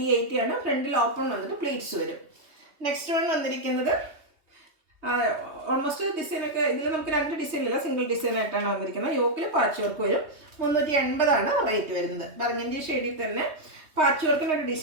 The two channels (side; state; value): left; late; 3.2 ms